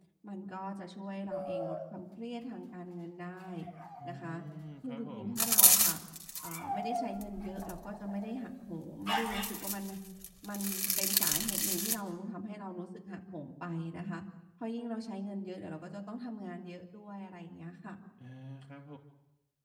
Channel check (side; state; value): both; identical; correlation 1.00